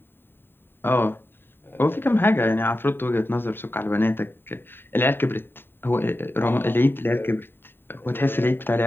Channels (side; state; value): right; late; 0.10 ms